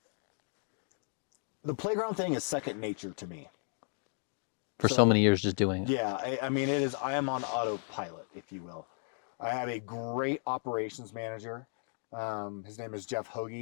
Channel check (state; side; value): silent; right; 55 dB below the other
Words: the playground thing is second nature to me. For so many years just doing it. Yeah, it is. I am on autopilot, if you will. I have a great operations manager. His name is Jeff